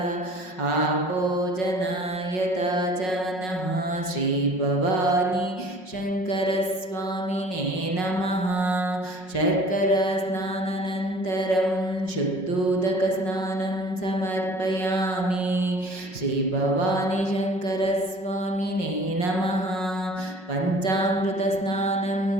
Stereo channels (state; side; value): late; right; 5.4 ms